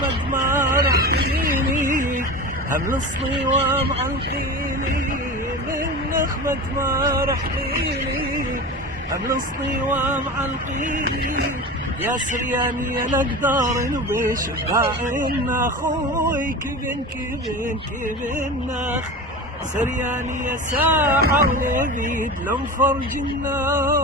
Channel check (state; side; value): normal; both; correlation 0.29